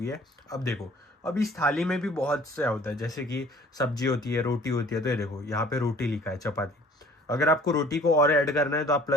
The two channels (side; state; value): both; normal; correlation 0.52